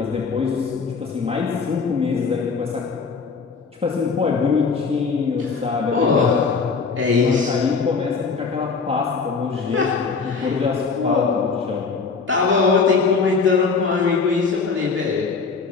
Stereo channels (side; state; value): right; quieter; 5.0 dB